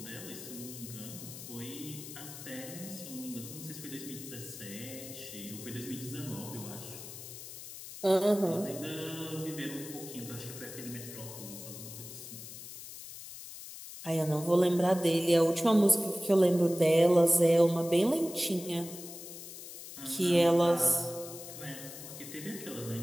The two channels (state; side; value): noise; left; hiss, 12 dB below the sound